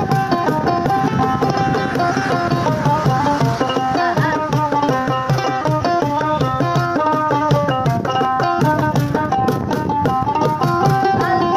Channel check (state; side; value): identical; both; correlation 1.00